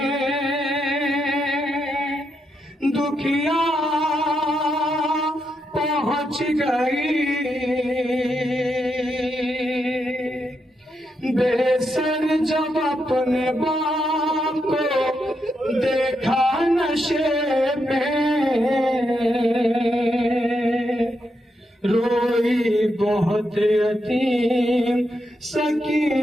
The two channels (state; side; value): normal; both; correlation 0.82